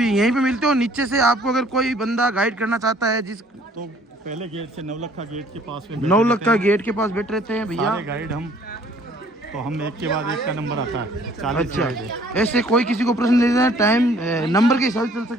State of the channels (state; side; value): normal; both; correlation 0.58